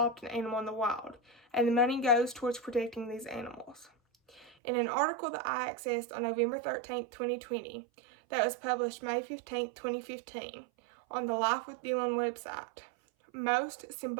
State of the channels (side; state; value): left; drops out; at 4.5 s